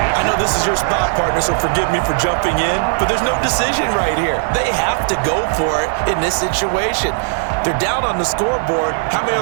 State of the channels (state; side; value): silent; left; 64 dB below the other